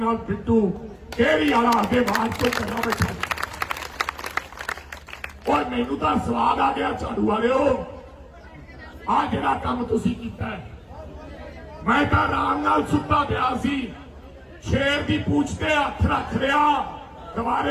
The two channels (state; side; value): identical; both; correlation 1.00